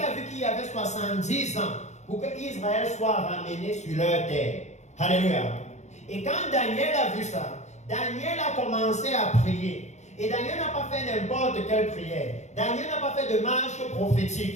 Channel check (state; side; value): late; right; 0.33 ms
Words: vu qu'il y avait 70 ans pour que Israël soit ramené sur leur terre. Alléluia. Et quand Daniel a vu ça, Daniel a commencé à prier. Et Daniel n'a pas fait n'importe quelle prière. Daniel n'a pas fait de marche